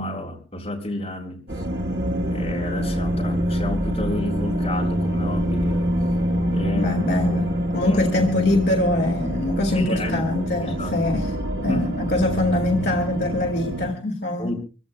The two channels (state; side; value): normal; both; correlation 0.64